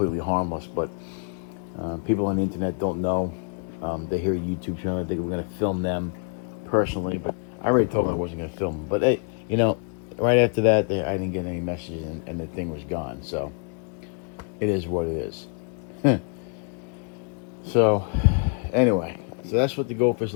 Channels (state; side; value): quieter; right; 39.8 dB